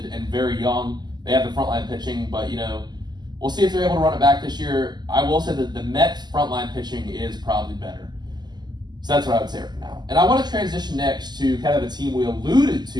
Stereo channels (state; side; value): late; left; 0.21 ms